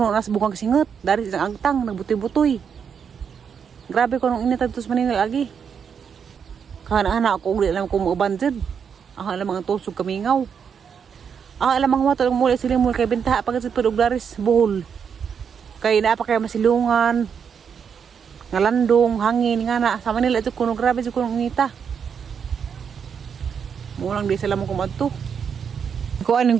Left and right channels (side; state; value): left; quieter; 7.0 dB